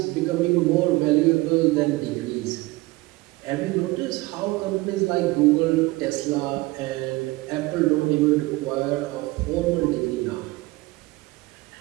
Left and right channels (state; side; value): quieter; left; 20.9 dB